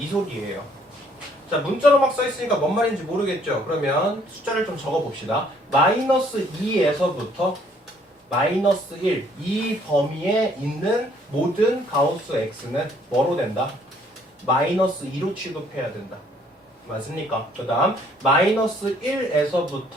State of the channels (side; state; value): both; normal; correlation 0.63